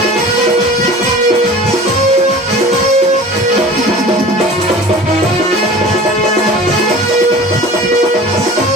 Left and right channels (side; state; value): both; normal; correlation 0.40